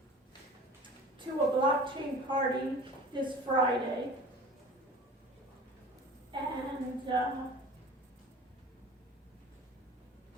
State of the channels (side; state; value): both; normal; correlation 0.40